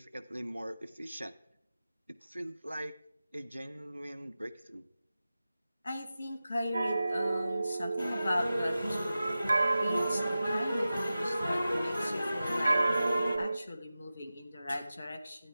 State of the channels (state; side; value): inverted; both; correlation -0.94